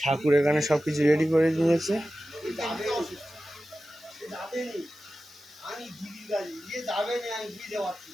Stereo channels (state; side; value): noise; right; hiss, 26 dB below the sound